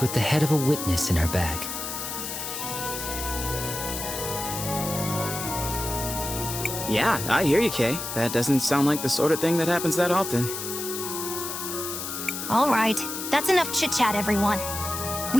with the head of a witness in her bag. Yeah, I hear you, Kay. That doesn't sound like the sort of thing that happens that often. All right, that's enough chit-chat, everyone.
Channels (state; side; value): noise; left; hiss, 6 dB below the sound